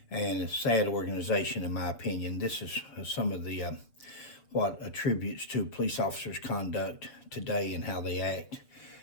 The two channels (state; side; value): late; right; 6.9 ms